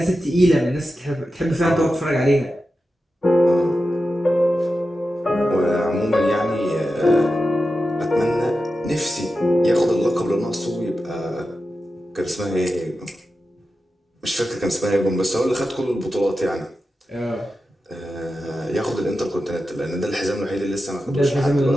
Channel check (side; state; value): both; normal; correlation 0.91